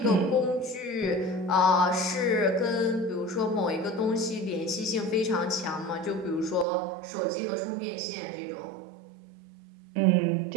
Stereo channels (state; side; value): drops out; left; at 6.7 s